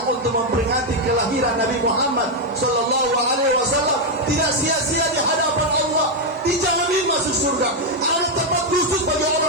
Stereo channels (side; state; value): both; normal; correlation 0.02